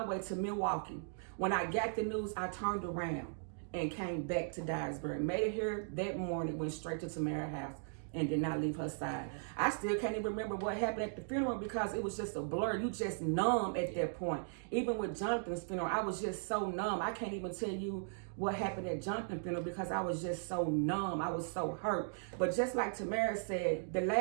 way to Milwaukee. When I got the news, I turned around and came back to Dyersburg. Made it here that morning, went straight to Tamara's house. and did not leave her side. I still can't even remember what happened at the funeral because it was just a blur. You just numb at that point. Even with Jonathan's funeral, I was just so numb. I can't even tell you what happened at Jonathan's funeral because I was just so numb. I was so hurt. But just like Tamara said, the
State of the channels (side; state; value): left; silent; digital silence